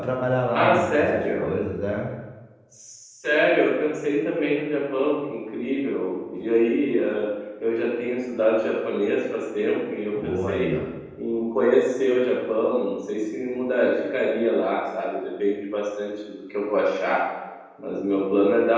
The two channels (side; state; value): both; identical; correlation 1.00